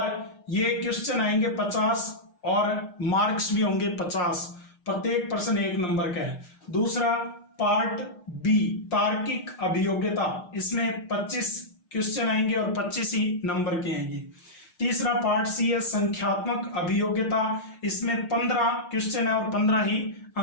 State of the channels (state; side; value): late; right; 6.4 ms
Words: ये क्वेश्चन आएंगे 50 और मार्क्स भी होंगे 50। प्रत्येक प्रश्न 1 नंबर का है। दूसरा पार्ट बी, तार्किक अभियोग्यता, इसमें 25 क्वेश्चन आएंगे और 25 ही नंबर के आएंगे। तीसरा पार्ट सी है संख्यात्मक अभियोग्यता, इसमें 15 क्वेश्चन है और 15 ही